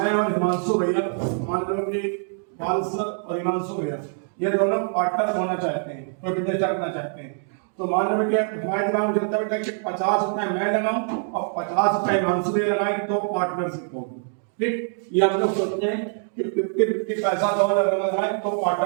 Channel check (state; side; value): silent; left; 62 dB below the other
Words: और हिमांशु भैया, मान लो कि बालसर और हिमांशु भैया ये दोनों पार्टनर होना चाहते हैं, कोई बिजनेस करना चाहते हैं। तो मान लो बेटा हमारे दिमाग में चलता है बेटा कि 50 रुपए मैं लगाऊं और 50 रुपए हिमांशु भैया लगाएं तो पार्टनरशिप होगी। ठीक, ये हम लोग सोचते हैं कि 50-50 पैसा दोनों लगाएं तो